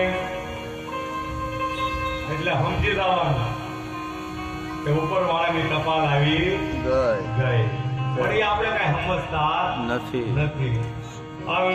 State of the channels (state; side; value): identical; both; correlation 1.00